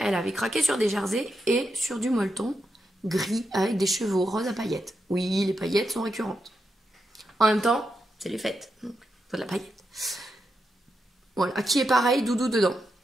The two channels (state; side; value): normal; both; correlation 0.85